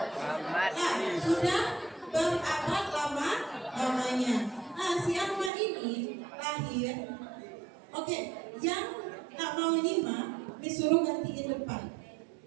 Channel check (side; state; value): left; drops out; at 5.5 s